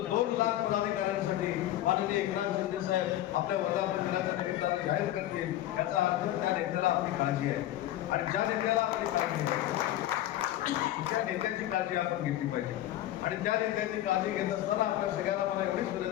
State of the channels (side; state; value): right; quieter; 13.7 dB